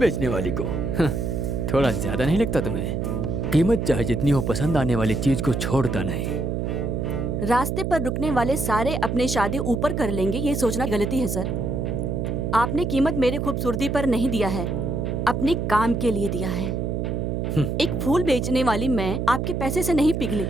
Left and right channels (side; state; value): right; noise; hum, 1 dB below the sound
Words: वाली को। थोड़ा ज्यादा नहीं लगता तुम्हें? कीमत चाहे जितनी हो, पसंद आने वाली चीज को छोड़ता नहीं। रास्ते पर रुकने वाले सारे अपने शादी ऊपर कर लेंगे, ये सोचना गलती है सर। आपने कीमत मेरे खूबसूरती पर नहीं दिया है, अपने काम के लिए दिया है। एक फूल बेचने वाली मैं आपके पैसे से नहीं पिघली,